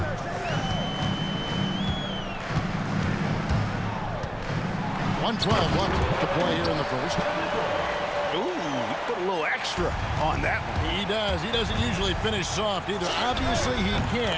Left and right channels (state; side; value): identical; both; correlation 1.00